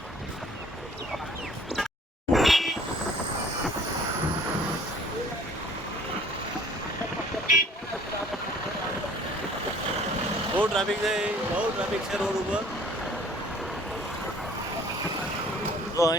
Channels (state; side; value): normal; both; correlation 0.54